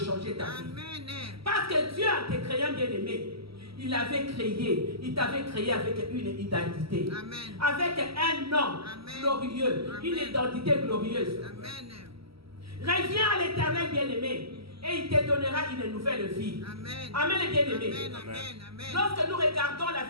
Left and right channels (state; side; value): late; left; 0.75 ms